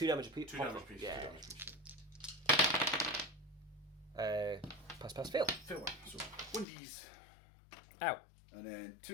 damage apiece. 2 damage piece. Yeah. 2 damage piece. Pass, fail. Fail one. So 1Ds. Ow. And then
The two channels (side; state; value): right; drops out; at 6.7 s